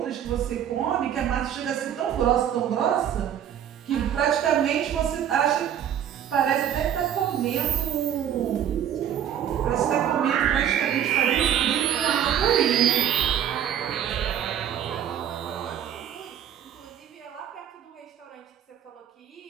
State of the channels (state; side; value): quieter; left; 9.7 dB